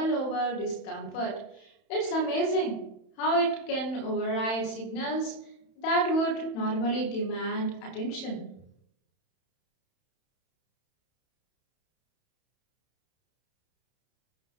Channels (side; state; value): right; late; 31 ms